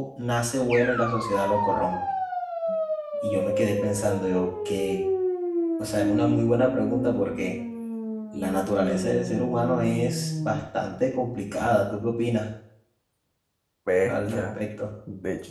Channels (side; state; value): both; identical; correlation 1.00